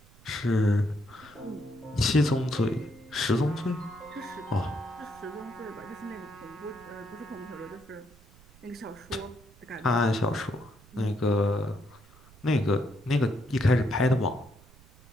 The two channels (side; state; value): right; noise; rumble, 25 dB below the sound